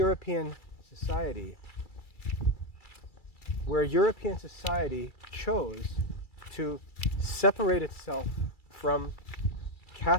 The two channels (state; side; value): late; right; 2.3 ms